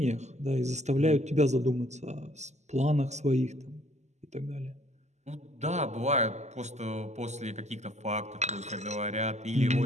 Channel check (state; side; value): late; left; 0.33 ms